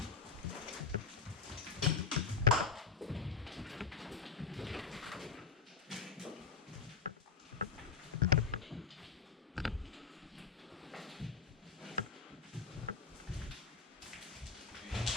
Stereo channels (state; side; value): quieter; right; 5.5 dB